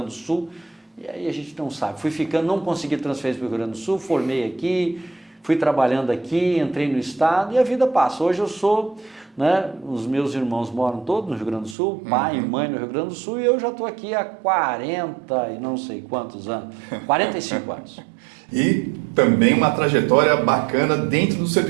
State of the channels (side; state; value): left; drops out; at 11.8 s